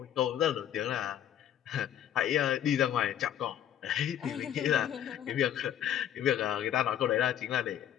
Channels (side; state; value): right; quieter; 10.5 dB